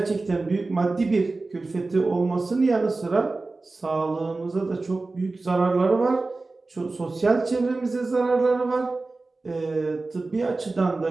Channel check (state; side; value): quieter; left; 3.5 dB